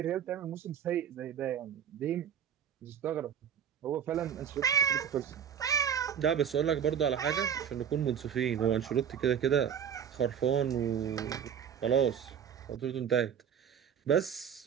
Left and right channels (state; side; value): quieter; left; 8.3 dB